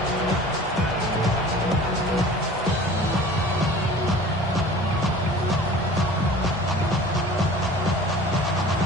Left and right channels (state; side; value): normal; both; correlation 0.43